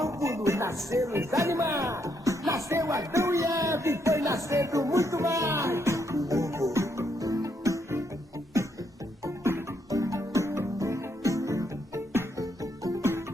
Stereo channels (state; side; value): normal; both; correlation 0.76